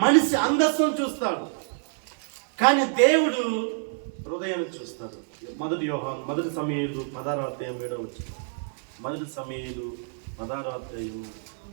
మనిషి అందస్సును చూస్తాడు, కానీ దేవుడు హృదయాన్ని చూస్తాడు. మొదటి సమూయేలు 16:7. మొదటి సమూయేలు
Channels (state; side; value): silent; left; 60 dB below the other